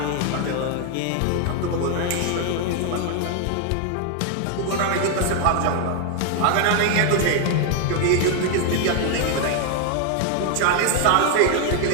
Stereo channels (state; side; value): different; both; correlation 0.00